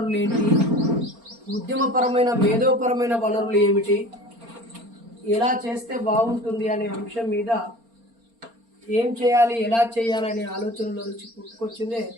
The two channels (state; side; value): late; left; 4.3 ms